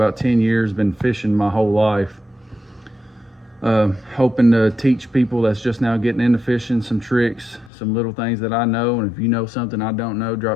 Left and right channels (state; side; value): drops out; right; at 7.7 s